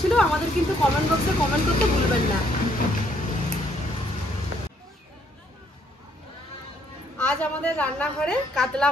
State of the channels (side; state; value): both; normal; correlation 0.68